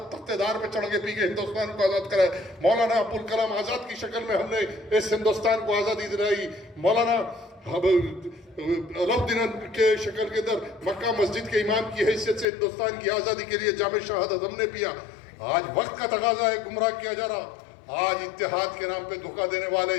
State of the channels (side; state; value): right; drops out; at 12.5 s